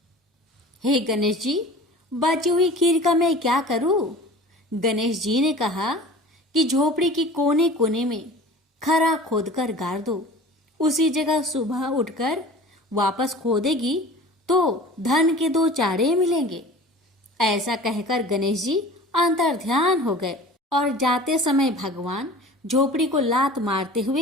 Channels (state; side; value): normal; both; correlation 0.41